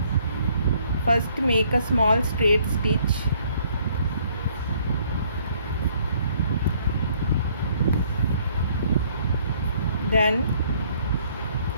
First make a small straight stitch. Then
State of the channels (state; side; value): inverted; both; correlation -0.64